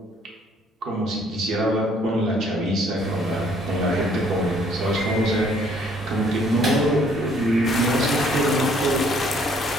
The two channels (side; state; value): both; normal; correlation 0.62